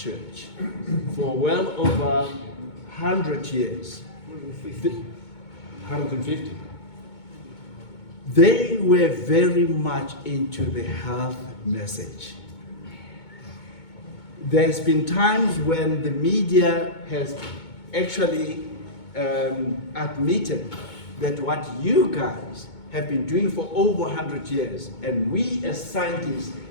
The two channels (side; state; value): right; late; 2.2 ms